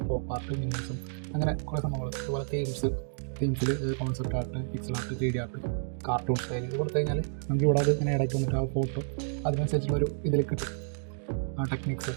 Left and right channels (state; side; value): silent; left; digital silence